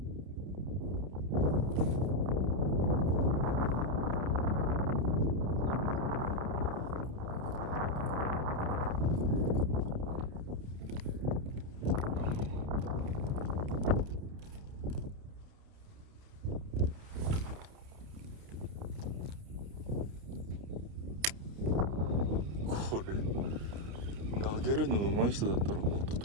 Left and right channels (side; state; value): left; late; 29 ms